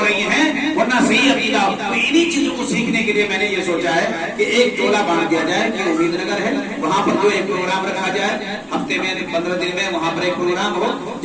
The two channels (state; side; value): identical; both; correlation 1.00